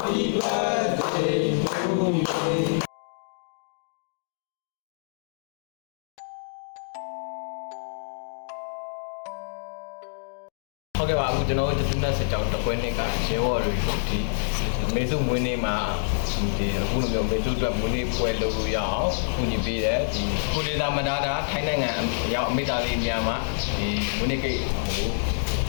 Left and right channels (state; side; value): silent; right; digital silence